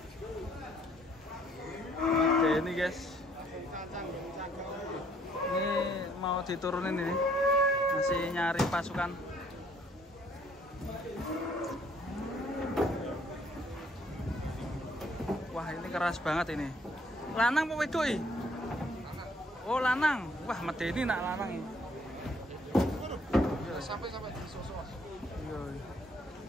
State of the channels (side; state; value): both; normal; correlation 0.64